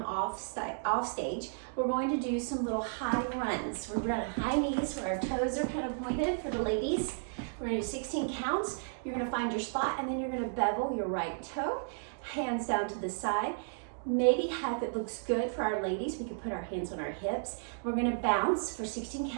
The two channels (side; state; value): left; silent; digital silence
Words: off stage. We're going to do some little high runs. We're going to high knees where our toes are kind of pointed for the ladies. We're going to do 16 counts. You're going to find your spot, and then you're going to bevel your right toe, hands down to the side. Maybe if it looks good for our ladies, we can put our hands on our hips. We're going to bounce for 16